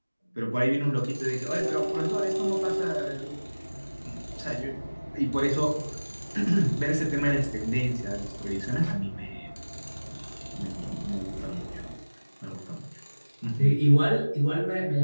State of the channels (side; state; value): both; inverted; correlation -1.00